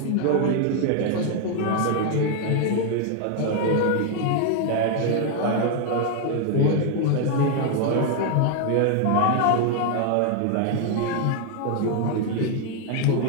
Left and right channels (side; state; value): both; different; correlation 0.00